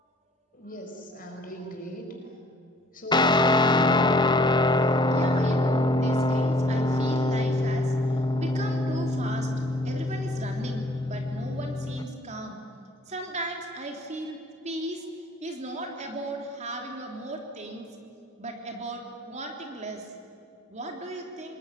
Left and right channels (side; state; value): both; normal; correlation 0.56